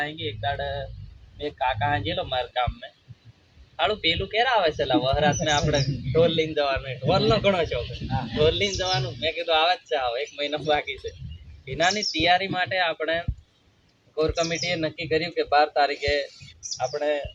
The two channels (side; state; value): both; identical; correlation 1.00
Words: આંગી એક દાડ એક કાકા હાંજેલો મારા ગામમાં હાલું પેલું ક્યારે આવે છે વહરાત ને આપણે ઢોલ લઈને જવાનું. ઢોલનો ઘણો શોખ, ઢોલ લઈને જવાનું. મેં કીધું આવે જ છે, આવો 1 મહિનો બાકી છે. એનાની તૈયારી માટે આપણે કોર કમિટીએ નક્કી કર્યું કે 12 તારીખે આપણે